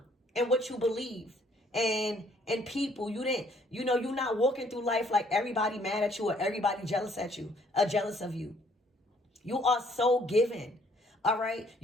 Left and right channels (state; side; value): normal; both; correlation 0.63